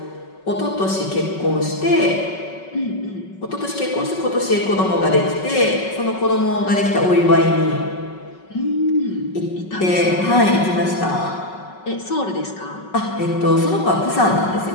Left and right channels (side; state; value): right; late; 5.3 ms